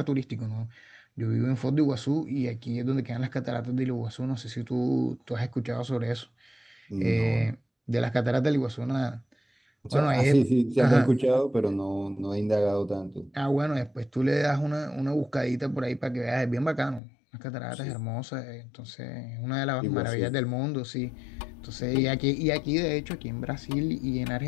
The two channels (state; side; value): drops out; right; at 17.0 s